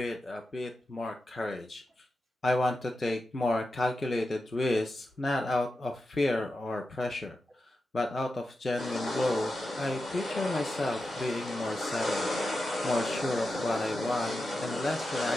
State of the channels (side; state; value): both; normal; correlation 0.90